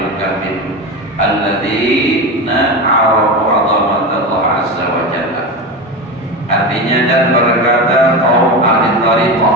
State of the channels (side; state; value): both; normal; correlation 0.22